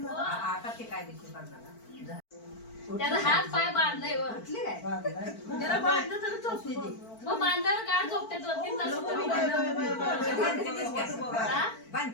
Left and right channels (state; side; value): late; right; 4.5 ms